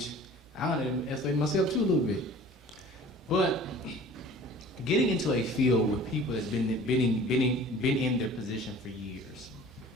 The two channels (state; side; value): normal; both; correlation 0.46